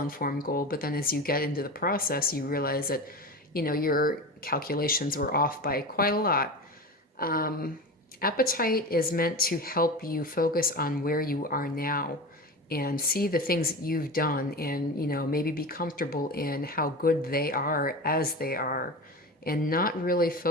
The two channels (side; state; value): both; normal; correlation 0.28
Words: goal, but then as you get into the process, you realize that, your calculations were off by quite a lot. Appetite is meant to help you focus on where you are now and see the things that you've done and, maybe be comfortable in how good they are as they are, and not really